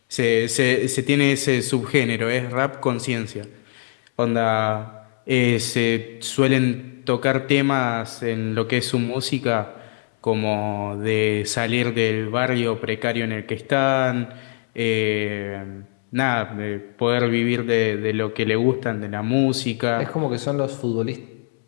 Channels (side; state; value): right; silent; 64 dB below the other